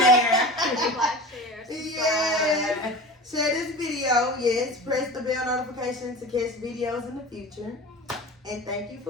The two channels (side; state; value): both; normal; correlation 0.33